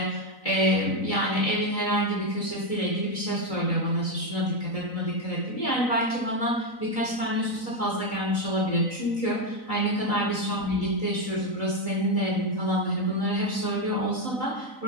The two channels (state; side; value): late; right; 3.9 ms